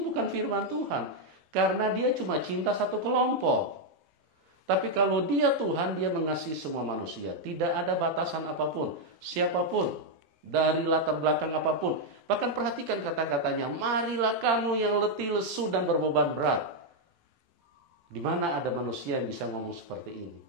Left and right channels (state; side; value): late; left; 18 ms